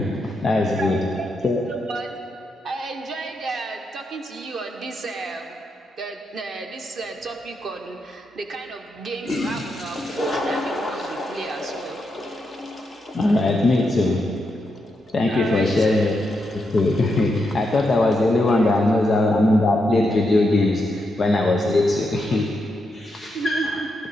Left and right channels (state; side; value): normal; both; correlation 0.83